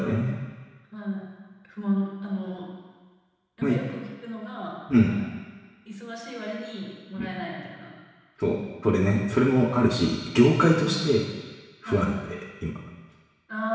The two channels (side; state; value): both; identical; correlation 1.00